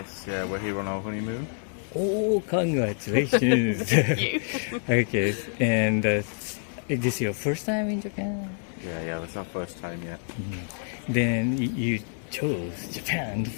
yeah, we're here on our honeymoon. Oh, congratulations. Thank you. Okay, and is this your first time in Japan? Yeah, that's our first time yet. Then you chose Japan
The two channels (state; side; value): silent; right; digital silence